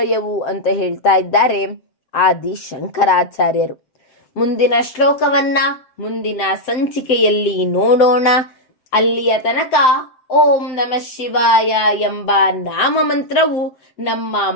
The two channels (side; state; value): right; late; 7.8 ms